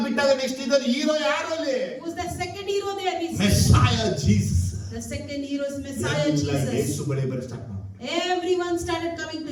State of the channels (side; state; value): both; identical; correlation 1.00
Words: ಬಿಟ್ಟಾಗ ನೆಕ್ಸ್ಟ್ ಇದ್ದ ಹೀರೋ ಯಾರು ಅಲ್ಲಿ? Who's the second hero there? Messiah Jesus. The second hero is Messiah Yesu Jesus. ಬಳಿ ಬರ ಸ್ಟಾರ್ಟ್ ಮಾಡಿದ್ರು. Everyone started coming